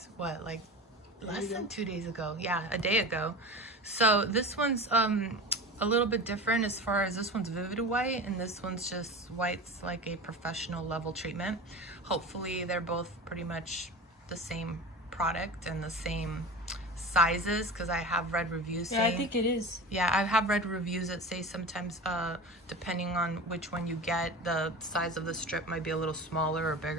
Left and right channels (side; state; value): both; normal; correlation 0.31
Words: what, like less than 2 days ago. Yeah, a day ago. So this one's a little bit different as far as this one's Vivid White and this one's just white's like a professional level treatment. Hopefully they're both pretty much the same product and the same sizes, because I have read reviews saying, yeah, I think it is. Yeah, I have read reviews that say sometimes depending on which one you get, the size of the strip might be a little smaller or